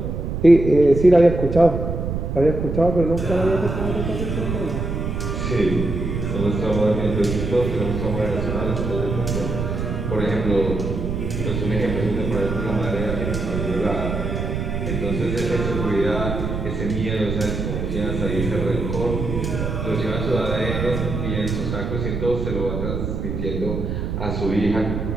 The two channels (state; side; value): noise; right; rumble, 3 dB below the sound